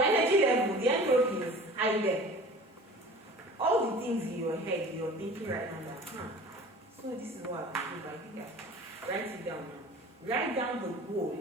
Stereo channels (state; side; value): normal; both; correlation 0.42